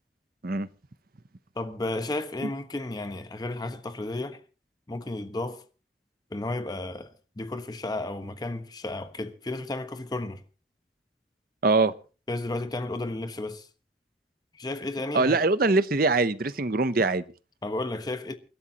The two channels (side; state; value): both; normal; correlation 0.32